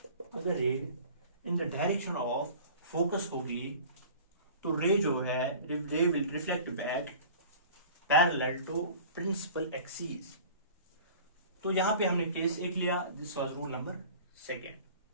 अगर ray in the direction of focus होगी, तो रे जो है ray will reflect back parallel to principal axis. तो यहां पे हमने केस एक लिया, this was rule number second.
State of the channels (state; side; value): inverted; both; correlation -0.43